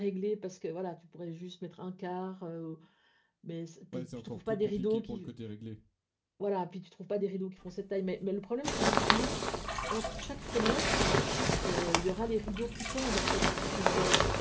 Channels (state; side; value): identical; both; correlation 1.00